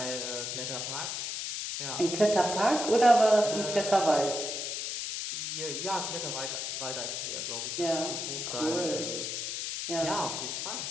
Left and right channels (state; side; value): noise; left; hiss, 3 dB below the sound